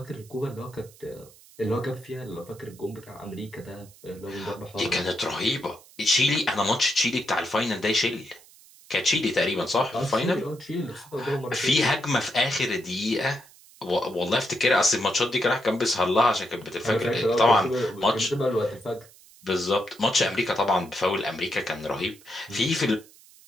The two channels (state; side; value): noise; right; hiss, 24 dB below the sound